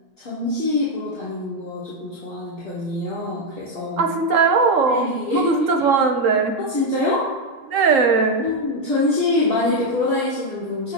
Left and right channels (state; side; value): late; left; 3.8 ms